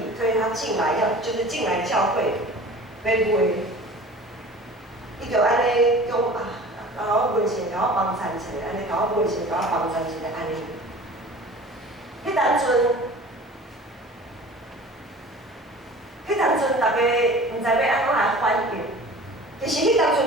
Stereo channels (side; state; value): both; normal; correlation 0.42